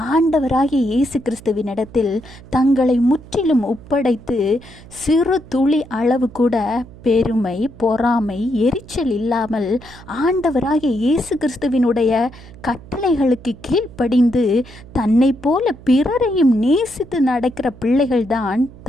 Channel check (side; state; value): right; noise; hum, 20 dB below the sound